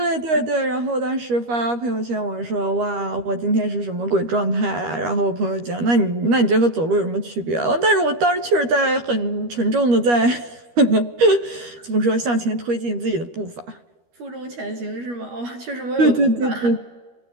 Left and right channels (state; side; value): late; left; 13 ms